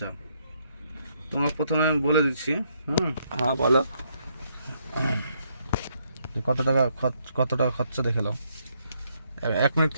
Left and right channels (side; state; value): both; inverted; correlation -0.73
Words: তোমাকে প্রথমে আমি বলে দিচ্ছি। হ্যাঁ বলো। কত টাকা খরচা দেখে নাও। 1 মিনিট